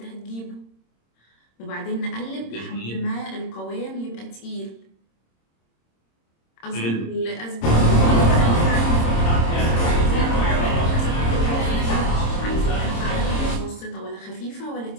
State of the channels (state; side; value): late; right; 26 ms